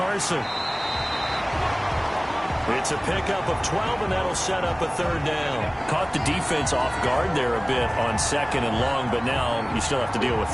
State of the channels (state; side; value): identical; both; correlation 1.00